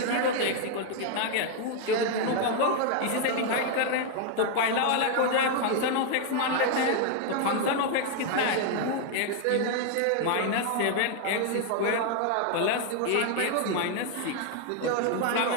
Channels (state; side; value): different; both; correlation 0.00